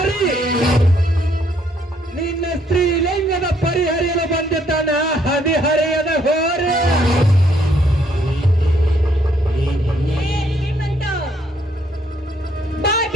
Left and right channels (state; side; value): normal; both; correlation 0.69